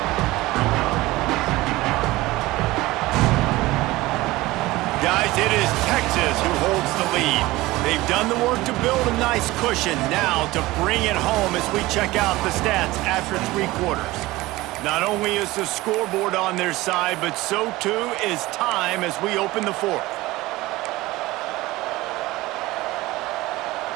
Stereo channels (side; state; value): left; quieter; 19.1 dB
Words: Guys, it is Texas who holds the lead. They've done the work to build a nice cushion. Now to bring it home as we check out the stats after 3 quarters. Not only is the scoreboard on their side, but so too is time as we open the fourth.